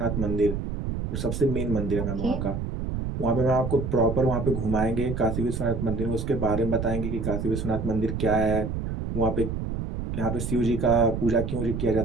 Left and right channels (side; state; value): right; noise; rumble, 3 dB below the sound